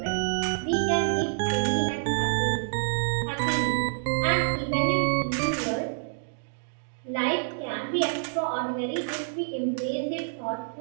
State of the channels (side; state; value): left; silent; digital silence